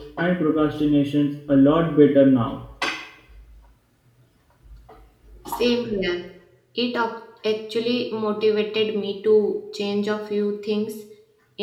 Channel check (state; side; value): identical; both; correlation 1.00